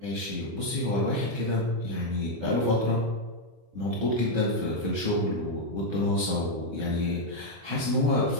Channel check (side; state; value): left; late; 25 ms